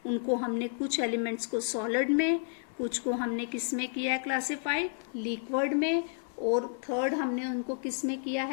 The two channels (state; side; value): silent; right; digital silence